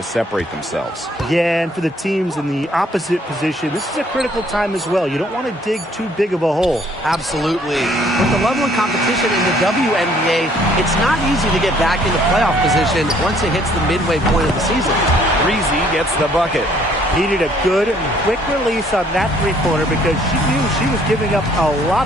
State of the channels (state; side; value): normal; both; correlation 0.62